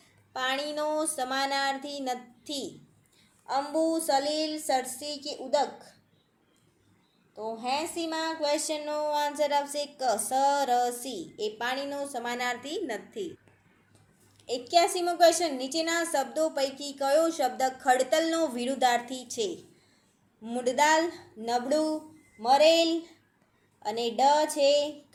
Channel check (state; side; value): identical; both; correlation 1.00